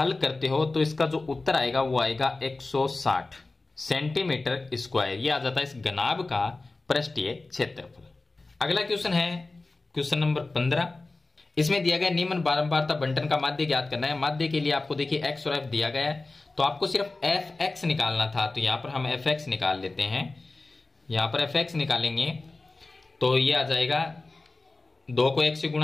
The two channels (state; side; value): quieter; right; 3.3 dB